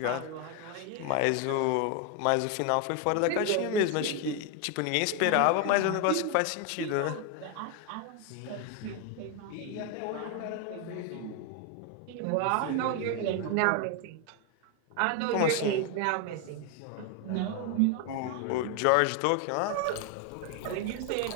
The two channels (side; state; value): both; different; correlation 0.01